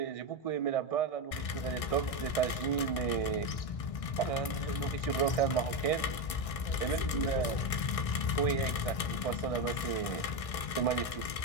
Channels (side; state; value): right; late; 1.6 ms